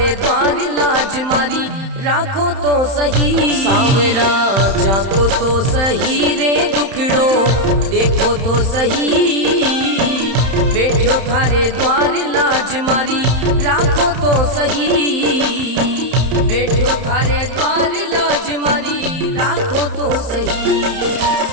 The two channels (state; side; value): late; left; 31 ms